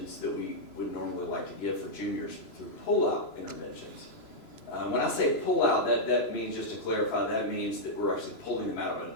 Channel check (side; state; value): right; late; 3.0 ms